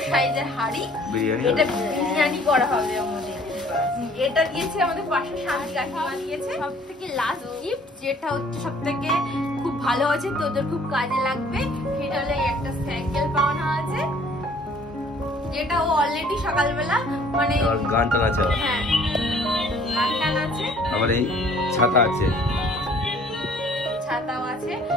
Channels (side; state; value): both; normal; correlation 0.56